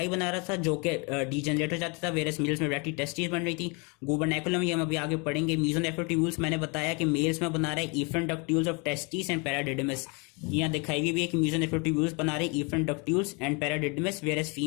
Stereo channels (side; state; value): right; quieter; 31.7 dB